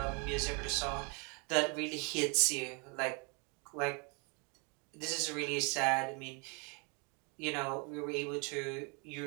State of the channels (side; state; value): left; quieter; 33.6 dB